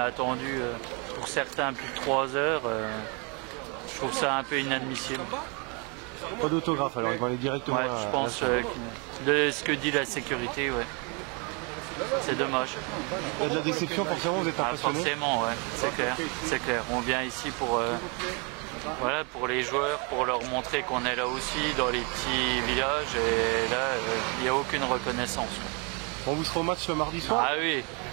attendu pour certains plus de 3 heures. Je trouve ça un peu inadmissible. Pas d'autographe alors, ils vont aller directement Ouais, je pense de ce que dit la sécurité, ouais. C'est dommage. Il y a de la déception, forcément, vous êtes impressionné? Forcément, ouais, c'est clair, c'est clair. On vient ici pour, voilà, pour les joueurs, pour leur montrer qu'on est là aussi dans les petits villages et là, il n'y a aucune reconnaissance. On vous sera au match le mardi soir? Ah oui,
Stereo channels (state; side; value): quieter; left; 33.0 dB